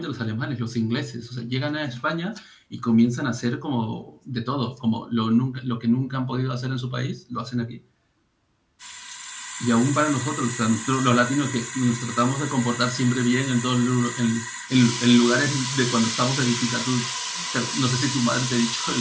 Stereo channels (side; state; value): both; identical; correlation 1.00